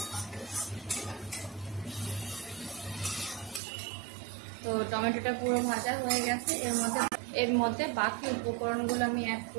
তো টমেটোটা পুরো ভাজা হয়ে গেছে। এর মধ্যে বাকি উপকরণগুলো আমি অ্যাড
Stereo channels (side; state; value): left; drops out; at 3.6 s